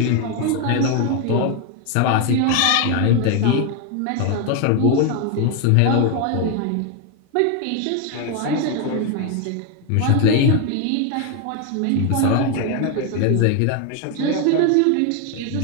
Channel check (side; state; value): both; different; correlation 0.01